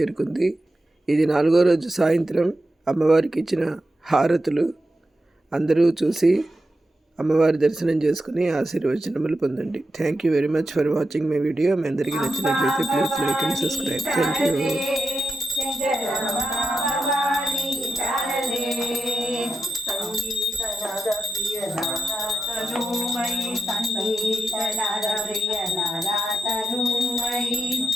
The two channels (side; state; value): both; normal; correlation 0.89